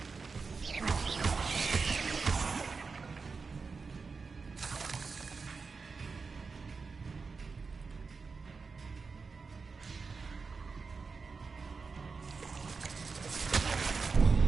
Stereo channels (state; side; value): quieter; left; 4.7 dB